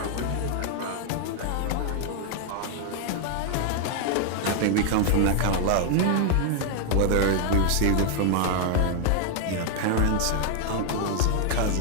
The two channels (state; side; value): different; both; correlation 0.00